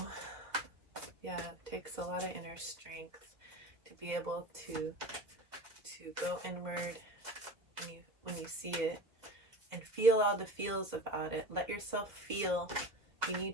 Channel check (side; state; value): left; late; 2.0 ms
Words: yeah, it takes a lot of inner strength to be able to go inward when you see it and feel all the feels about it. Let yourself feel. If you need